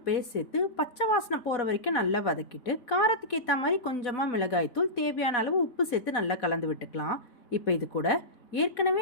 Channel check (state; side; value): late; right; 4.1 ms